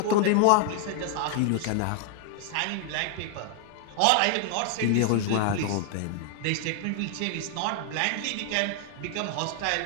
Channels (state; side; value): different; both; correlation 0.00